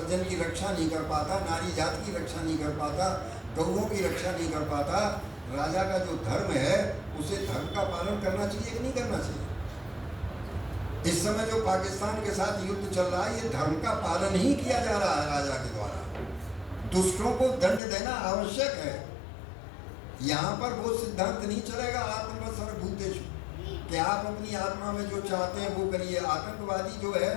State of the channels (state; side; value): drops out; right; at 17.8 s